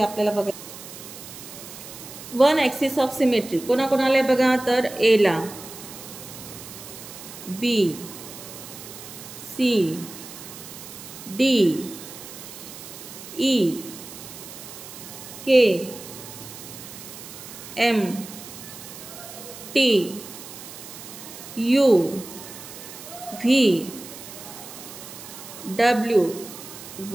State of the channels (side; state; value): right; noise; hiss, 14 dB below the sound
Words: आपल्याला बघा. वन ॲक्सिस ऑफ सिमेट्री कोणाकोणाला आहे बघा, तर एला, B, C, D, E, K, M, T, U, V, W,